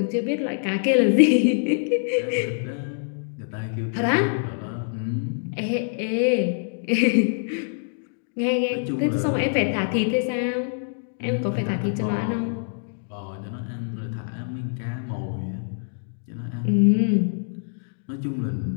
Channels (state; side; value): silent; right; digital silence